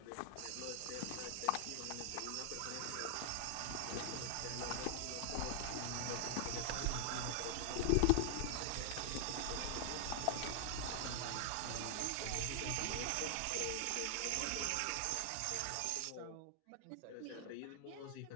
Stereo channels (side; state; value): both; different; correlation 0.00